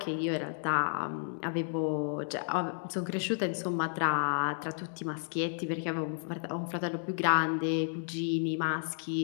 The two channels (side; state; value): right; silent; digital silence